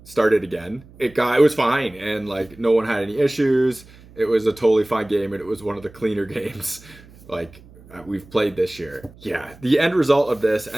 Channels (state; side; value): noise; right; hum, 23 dB below the sound